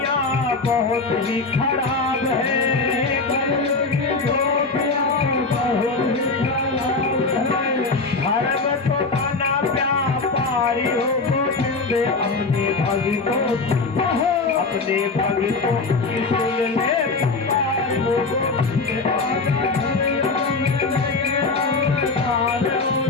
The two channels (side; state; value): right; quieter; 3.9 dB